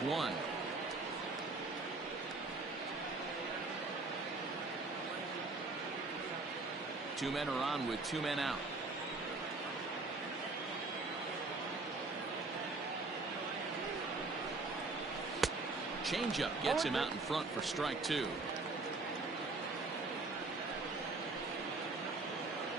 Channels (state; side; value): quieter; left; 3.5 dB